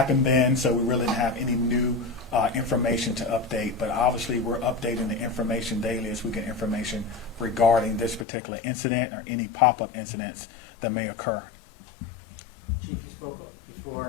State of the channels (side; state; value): right; drops out; at 8.2 s